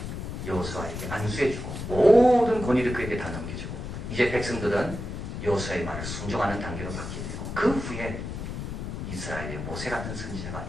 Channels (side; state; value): left; noise; rumble, 6 dB below the sound